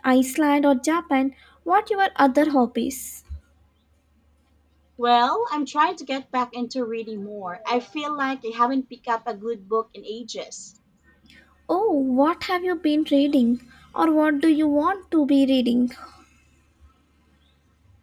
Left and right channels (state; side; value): identical; both; correlation 1.00